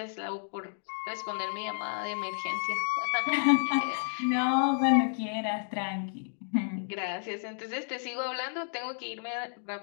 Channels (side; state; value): right; silent; digital silence